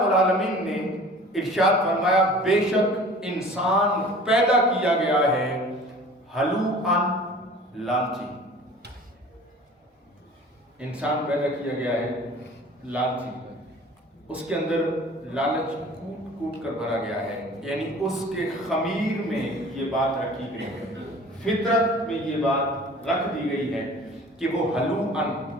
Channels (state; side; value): normal; both; correlation 0.45